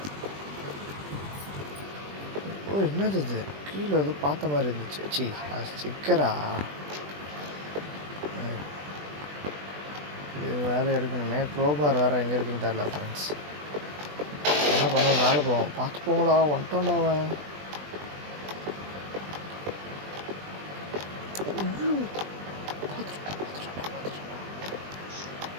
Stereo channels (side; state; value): left; late; 20 ms